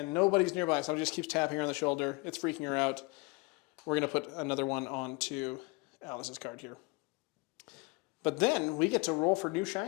nobody's nearby, so it just keeps tapping her on the shoulder. It's freaking her out. We're going to put another one onto Alice's card here. But then we get to roll for new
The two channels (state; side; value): quieter; right; 27.0 dB